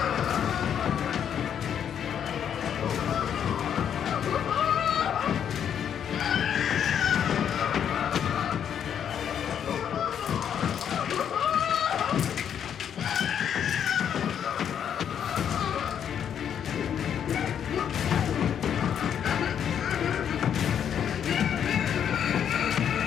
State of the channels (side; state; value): right; quieter; 8.7 dB